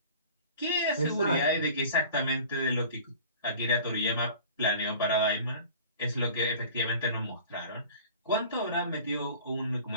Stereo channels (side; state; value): both; inverted; correlation -0.43